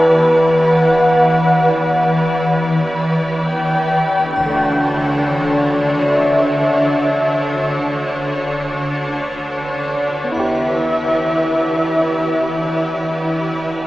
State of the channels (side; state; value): both; normal; correlation 0.95